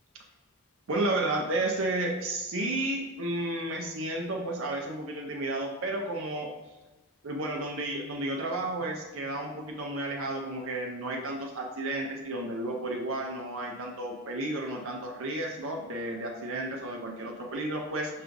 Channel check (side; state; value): both; normal; correlation 0.20